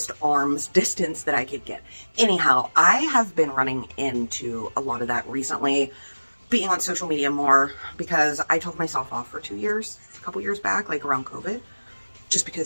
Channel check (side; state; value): both; inverted; correlation -1.00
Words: arm's distance that I could get. Anyhow, I have been running into a lot of that recently, being on social media more, because I took myself off for 2 years, a couple years back, like around COVID, just